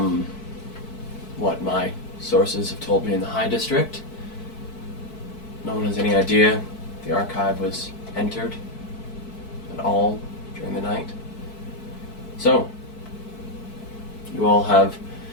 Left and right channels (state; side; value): late; right; 4.6 ms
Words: what my sources have told me in the High District, no one has any idea the archive was entered at all during the night. So, you all have